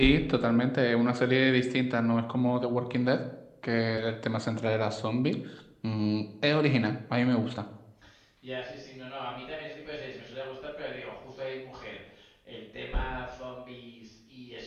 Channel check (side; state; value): both; identical; correlation 1.00